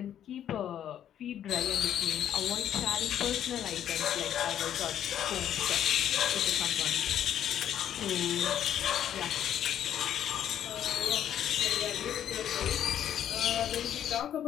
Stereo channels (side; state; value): right; quieter; 10.3 dB